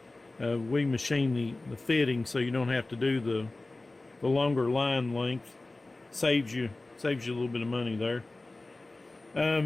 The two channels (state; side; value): quieter; right; 3.1 dB